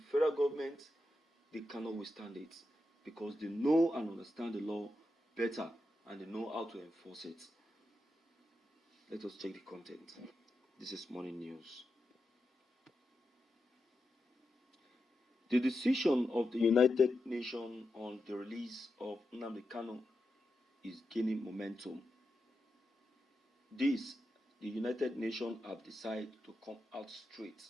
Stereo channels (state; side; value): normal; both; correlation 0.88